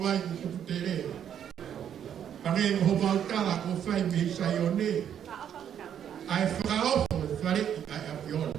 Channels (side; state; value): left; quieter; 9.2 dB